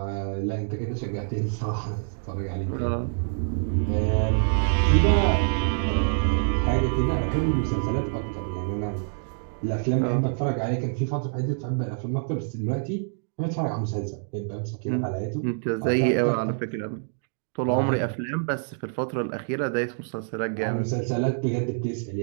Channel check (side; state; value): left; silent; digital silence